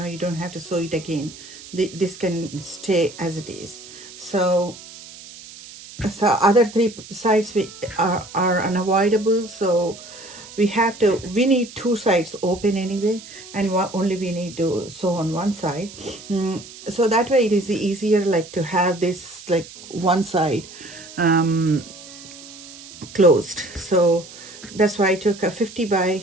don't have to sew it again. This can stay as it is. So other three sides are unavoidable, so we need two sides open anyway, and only we need to sew on one side. So that way it is easier, like to have this like one side closed. So that's why I took a 50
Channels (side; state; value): right; noise; hiss, 17 dB below the sound